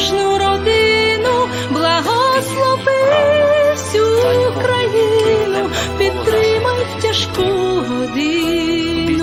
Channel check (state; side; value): identical; both; correlation 1.00